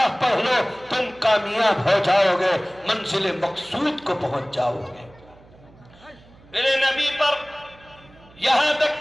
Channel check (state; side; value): noise; right; hum, 25 dB below the sound